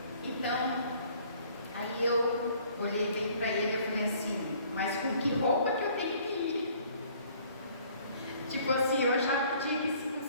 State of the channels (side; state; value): both; inverted; correlation -0.57